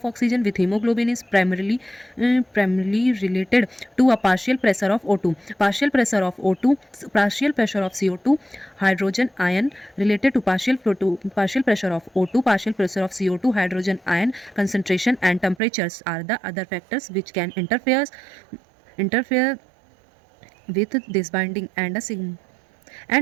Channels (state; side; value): drops out; left; at 15.6 s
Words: oxygen with hemoglobin is primarily related to a partial pressure of O2. Partial pressure of CO2, hydrogen ion related to partial pressure of O2, partial pressure of CO2, hydrogen ion concentration and temperatures are the other factors which can interfere with this binding, and a